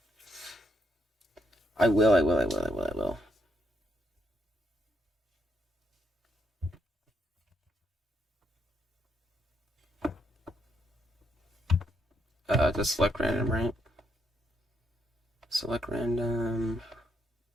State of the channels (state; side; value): normal; both; correlation 0.76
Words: I will. Just select random, right? Select random.